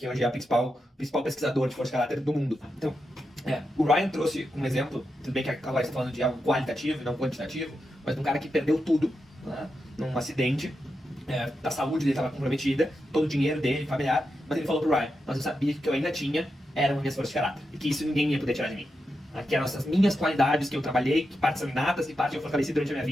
hoje é o principal pesquisador de força de caráter do mundo. Então, o Ryan trouxe um exemplo, tudo bem que agora está falando de algo qualitativo e não quantitativo, mas de um cara que perdeu tudo num acidente, a saúde dele estava comprometida, todo o dinheiro dele, familiar, mas ele falou pro Ryan, mas eu sabia que o que eu ainda tinha eram minhas forças de caráter, e que isso ninguém ia poder tirar de mim. Que eram essas minhas qualidades que eu trabalhei, que partes são inatas, que partes eu fortaleci durante a minha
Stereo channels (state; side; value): normal; both; correlation 0.87